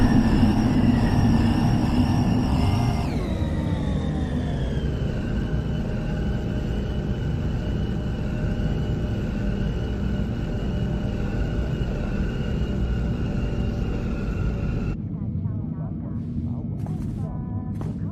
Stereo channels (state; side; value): identical; both; correlation 1.00